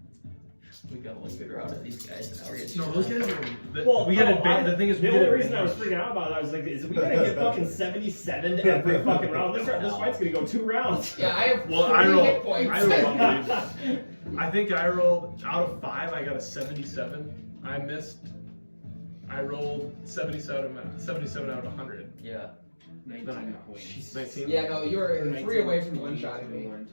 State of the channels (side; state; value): both; inverted; correlation -1.00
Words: We got one good route of these guys, and now we're getting. No, those guys are. Well, we got advantage. The thing is, we the get only reason I was advantage. freaking out about it, I was like, is we gonna get fucking 77 every fucking round? This fight's gonna go 2 rounds. Yeah, I have Well, 3 I hit rolled. points. I think I rolled out of 5. I got a 77. I missed. I rolled 77 out of 100. Yeah. 19 points. 19. Yeah, no, you were 3 away from one-shotting me.